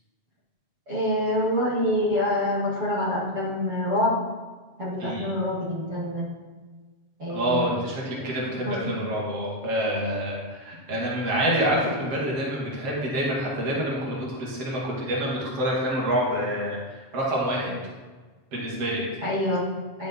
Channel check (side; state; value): left; late; 7.7 ms